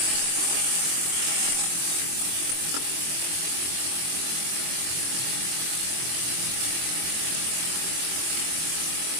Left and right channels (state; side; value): late; left; 23 ms